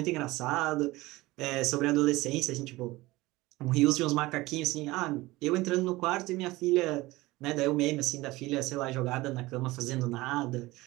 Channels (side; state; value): left; quieter; 19.8 dB